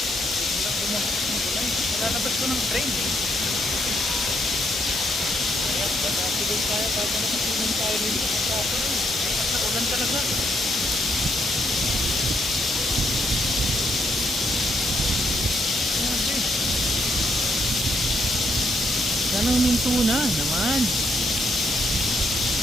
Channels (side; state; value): both; normal; correlation 0.74